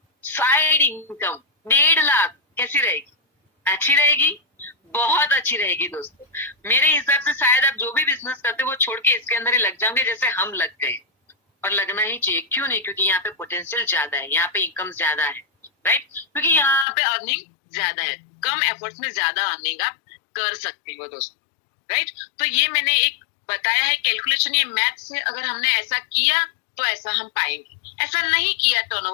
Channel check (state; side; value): drops out; right; at 16.9 s